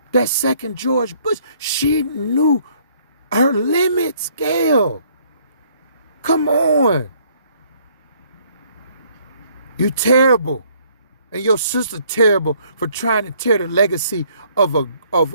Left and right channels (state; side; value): inverted; both; correlation -0.63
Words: that second George Bush, she knew her limits, Gayle. Come on. You terrible. And your sister terrible for trying to tear the legacy of